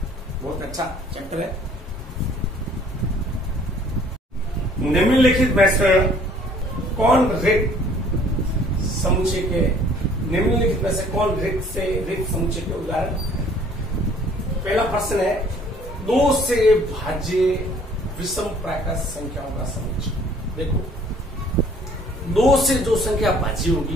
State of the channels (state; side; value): normal; both; correlation 0.57